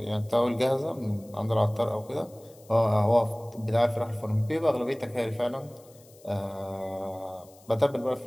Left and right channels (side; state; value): left; noise; hiss, 26 dB below the sound